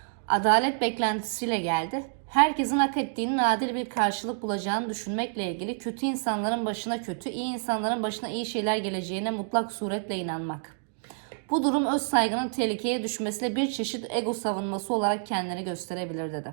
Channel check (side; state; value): left; silent; digital silence